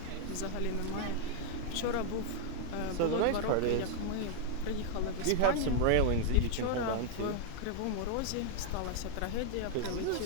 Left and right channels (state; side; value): different; both; correlation 0.00